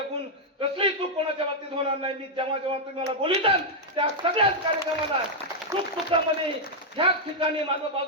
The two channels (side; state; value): both; normal; correlation -0.03